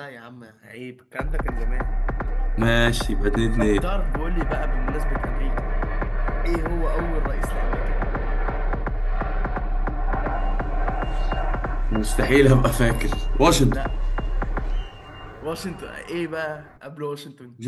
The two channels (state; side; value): identical; both; correlation 1.00